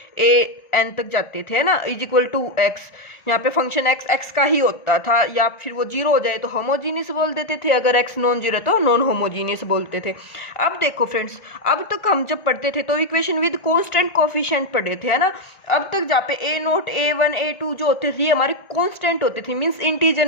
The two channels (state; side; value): late; right; 1.4 ms